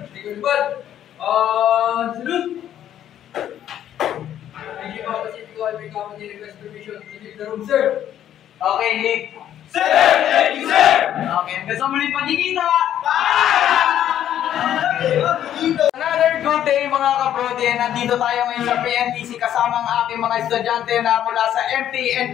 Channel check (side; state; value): right; quieter; 10.9 dB